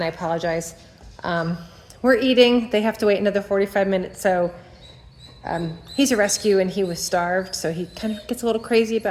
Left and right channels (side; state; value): both; identical; correlation 1.00